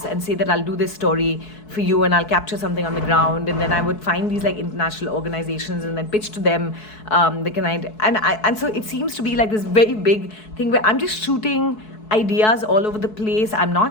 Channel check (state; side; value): late; right; 4.7 ms